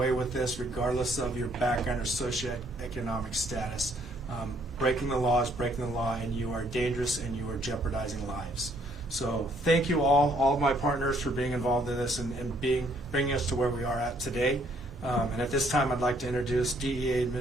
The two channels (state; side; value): normal; both; correlation 0.66